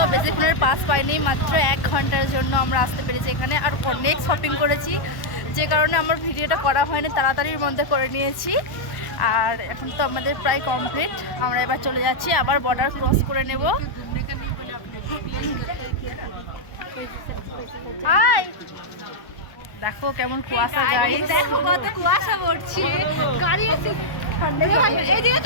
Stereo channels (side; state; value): right; late; 1.1 ms